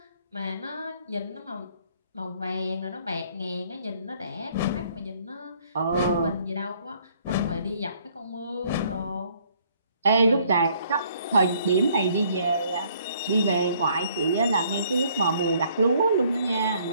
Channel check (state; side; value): inverted; both; correlation -0.63